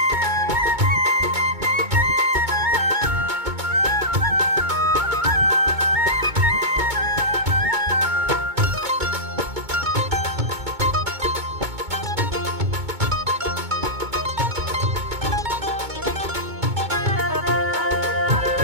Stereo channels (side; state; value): left; late; 2.2 ms